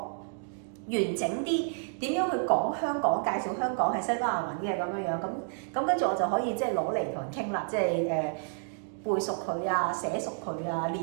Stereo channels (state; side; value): silent; left; 58 dB below the other